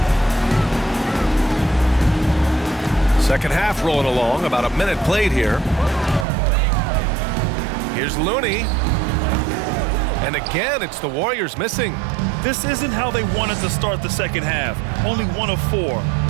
Second half rolling along, about a minute played here. Here's Looney. And again, it's the Warriors missing. This isn't how they wanted to start the second half. Only 1 of 4.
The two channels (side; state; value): left; drops out; at 6.2 s